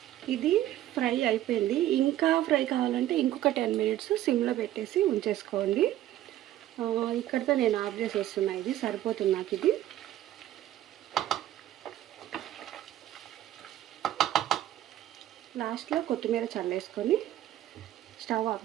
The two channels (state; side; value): quieter; left; 13.3 dB